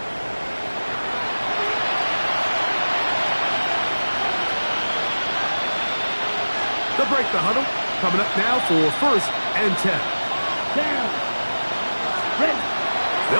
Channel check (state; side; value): inverted; both; correlation -1.00